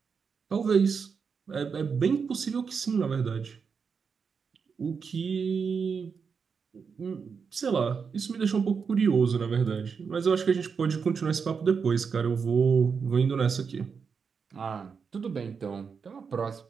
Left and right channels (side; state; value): left; quieter; 5.9 dB